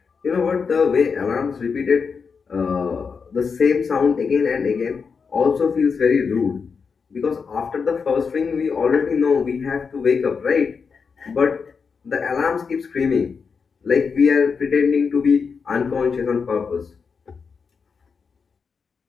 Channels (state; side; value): quieter; right; 5.6 dB